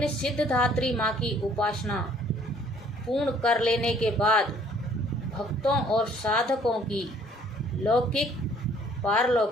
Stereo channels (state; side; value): normal; both; correlation 0.59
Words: सिद्धधात्री माँ की उपासना पूर्ण कर लेने के बाद भक्तों और साधकों की लौकिक